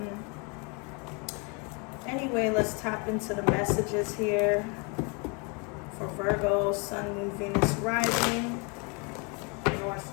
Anyway, let's tap into the messages here for Virgo, Sun, Moon, Venus, Rising,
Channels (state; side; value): quieter; right; 32.7 dB